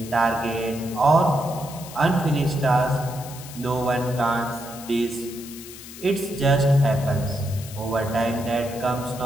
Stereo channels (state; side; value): noise; left; hiss, 15 dB below the sound